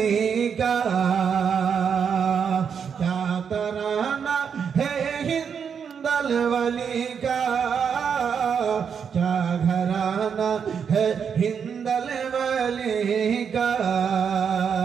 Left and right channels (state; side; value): quieter; left; 7.0 dB